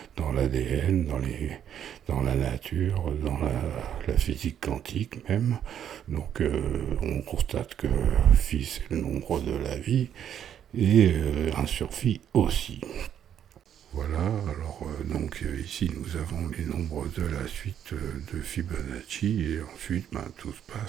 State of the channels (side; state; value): left; quieter; 9.6 dB